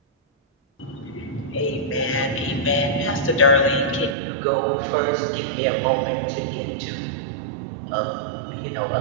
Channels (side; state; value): left; drops out; at 4.2 s